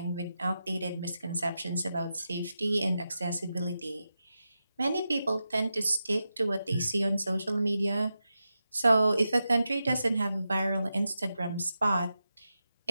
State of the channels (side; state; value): both; inverted; correlation -0.89